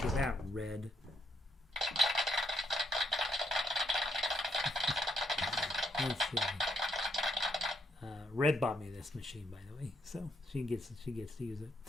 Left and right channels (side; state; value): both; normal; correlation 0.75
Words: of that, Red. Let's see. Red bought me this machine, by the way, so she gets to use it.